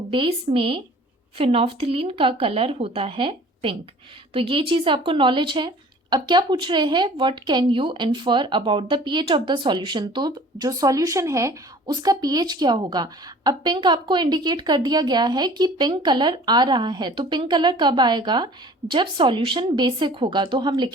बेस में फिनोल्फ्थलीन का कलर होता है पिंक। तो ये चीज़ आपको नॉलेज है। अब क्या पूछ रहे हैं, what can you infer about the pH of the solution, तो जो सॉल्यूशन है उसका पीएच क्या होगा। अब पिंक आपको इंडिकेट कर दिया गया है कि पिंक कलर आ रहा है, तो पिंक कलर कब आएगा, जब सॉल्यूशन बेसिक होगा। तो हम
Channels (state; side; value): normal; both; correlation 0.48